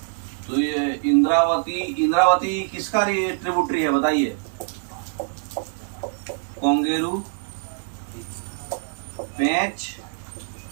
तो ये इंद्रावती किसका ट्रिब्यूटरी है बताइए? कोंगेरू, पेंच।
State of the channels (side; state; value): left; silent; 62 dB below the other